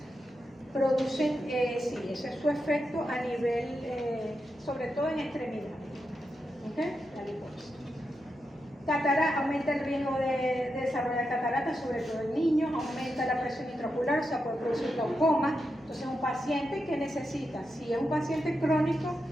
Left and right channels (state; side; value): noise; right; hum, 27 dB below the sound